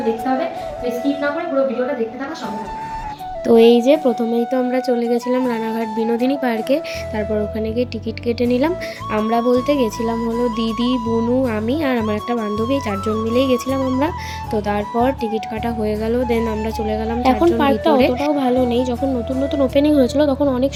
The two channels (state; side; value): identical; both; correlation 1.00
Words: দেখতে হবে। তো স্কিপ না করে পুরো ভিডিওটা দেখতে থাকা সঙ্গে থাকো। তো এই যে প্রথমেই তো আমরা চলে গেছিলাম রানাঘাট বিনোদিনী পার্কে। তারপর ওখানে গিয়ে টিকিট কেটে নিলাম। আমরা বলতে গেছিলাম হলো দিদি, বুনু, আমি আর আমার একটা বান্ধবী, 4 জন মিলেই গেছিলাম আমরা। তো তারপর টিকিট কাটা হয়ে গেল, দেন আমরা চলে গেলাম। এখন পার্কটা অতটাও ভালো নেই, যখন নতুন নতুন ওপেনিং হয়েছিল তখন অনেক